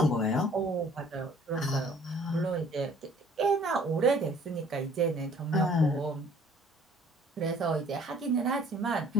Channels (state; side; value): normal; both; correlation 0.55